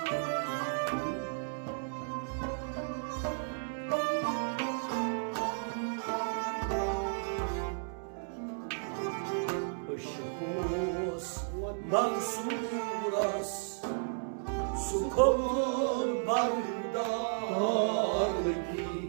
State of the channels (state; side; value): silent; left; digital silence